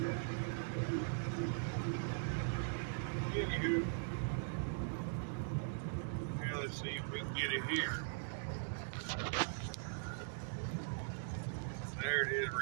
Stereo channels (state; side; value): silent; left; digital silence